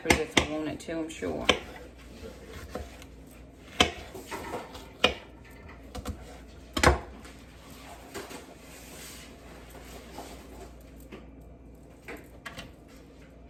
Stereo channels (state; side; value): identical; both; correlation 1.00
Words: if I wanted to, I'm sure.